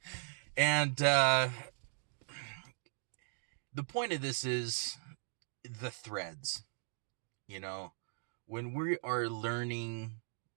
And the point of this is the threads, you know, when we are learning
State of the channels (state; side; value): silent; left; digital silence